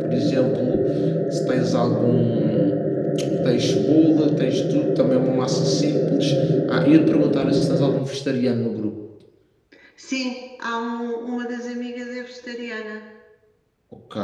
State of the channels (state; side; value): identical; both; correlation 1.00